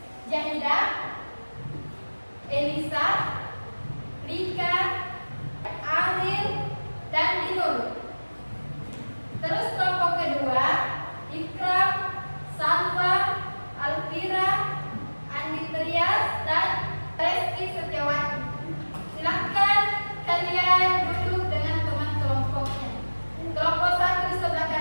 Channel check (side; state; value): both; inverted; correlation -1.00